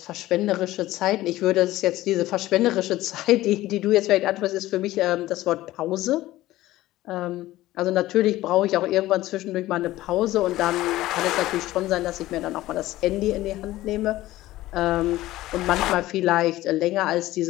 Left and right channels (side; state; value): right; quieter; 16.3 dB